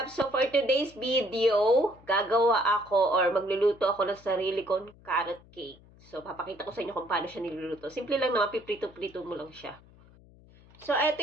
So, for today's video, gagawa ako or magluluto ako ng sarili kong carrot cake. So, papakita ko sa inyo kung paano siya niluluto. Simple lang naman, piprito-prito mo lang siya. So, ito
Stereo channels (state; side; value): noise; left; hum, 25 dB below the sound